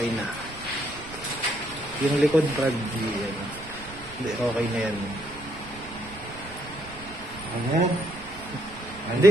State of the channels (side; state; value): right; noise; rumble, 17 dB below the sound